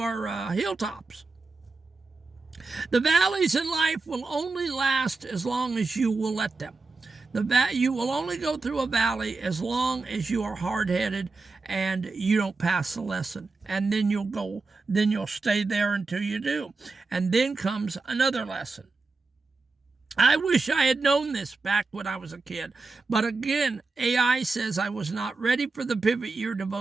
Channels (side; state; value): left; quieter; 3.8 dB